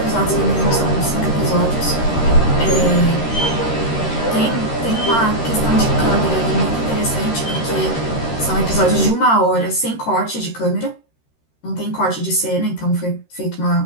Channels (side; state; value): right; late; 13 ms